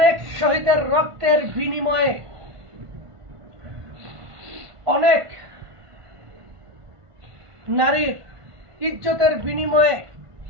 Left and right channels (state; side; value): late; left; 1.5 ms